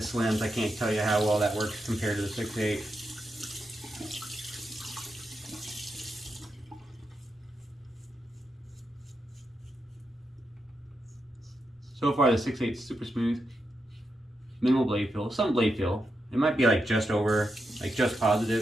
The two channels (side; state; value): both; normal; correlation 0.85